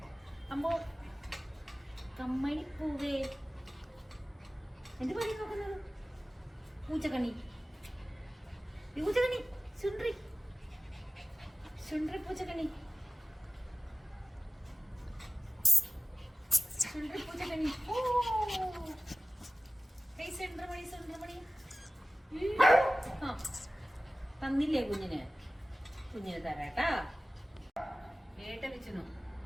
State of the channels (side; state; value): both; normal; correlation 0.95